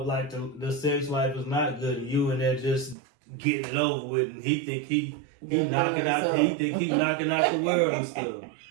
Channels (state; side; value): drops out; left; at 3.0 s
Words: like the sex life is not good, and you and there just getting it over with, and he think he knocking out the world and stuff.